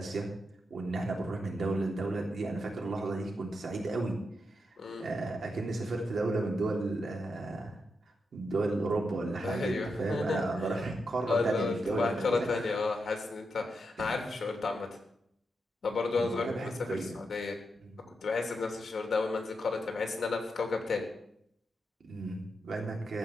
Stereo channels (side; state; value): both; normal; correlation 0.85